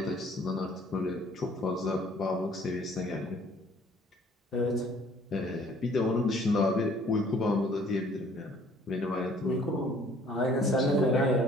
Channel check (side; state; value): both; normal; correlation 0.57